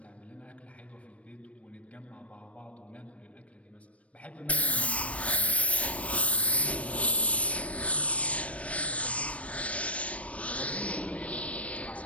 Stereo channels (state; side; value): late; right; 0.064 ms